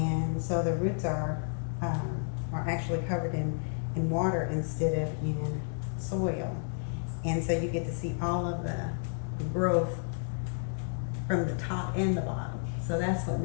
so the roots are actually covered in water instead of in soil, and so you get to see all of the growth from the top and the bottom. So that's what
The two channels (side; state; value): right; silent; digital silence